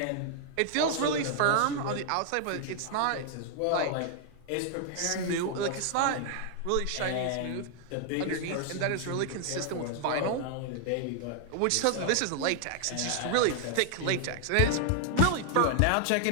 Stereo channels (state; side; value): different; both; correlation 0.00